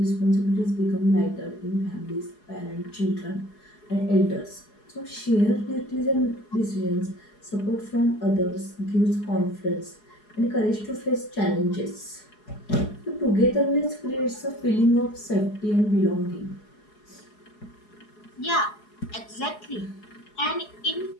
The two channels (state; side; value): late; right; 4.8 ms